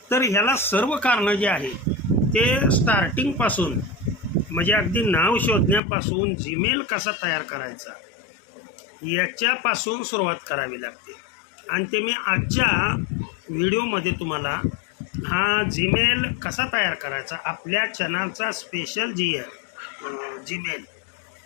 तर ह्याला सर्व कारणं जे आहे ते स्टार्टिंगपासून म्हणजे अगदी नाव शोधण्यापासून जीमेल कसा तयार करायचा याच्यापासून सुरुवात करावी लागते. आणि ते मी आजच्या व्हिडिओमध्ये तुम्हाला हा जीमेल कसा तयार करायचा, आपल्या चॅनलचा स्पेशल जीमेल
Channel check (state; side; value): drops out; right; at 5.8 s